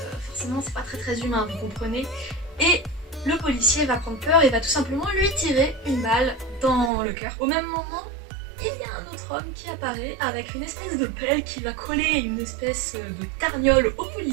forcément, c'est pas très humain, vous comprenez. Et le policier va prendre peur et va tout simplement lui tirer une balle dans le cœur. Au même moment, il y a un autre homme qui apparaît avec une espèce de pelle qui va coller une espèce de tarniole au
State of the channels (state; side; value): drops out; left; at 6.9 s